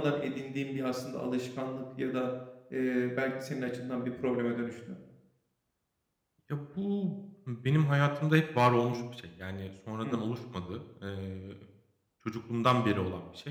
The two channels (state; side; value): identical; both; correlation 1.00